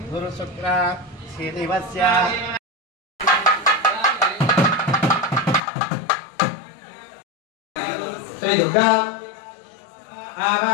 గురు శుక్ర శ్రీనివస్య శ్రీ దుర్గా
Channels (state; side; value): drops out; right; at 5.6 s